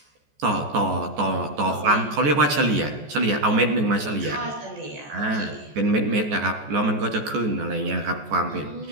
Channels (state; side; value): late; left; 14 ms